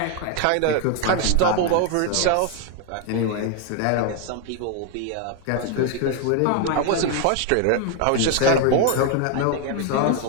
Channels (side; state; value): both; different; correlation 0.01